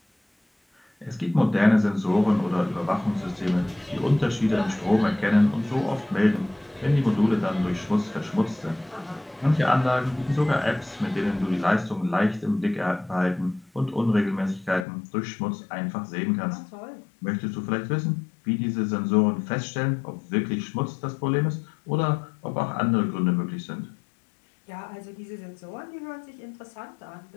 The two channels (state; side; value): drops out; right; at 14.9 s